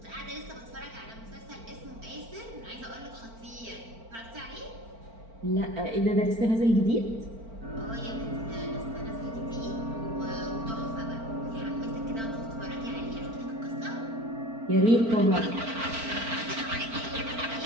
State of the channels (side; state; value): left; late; 4.4 ms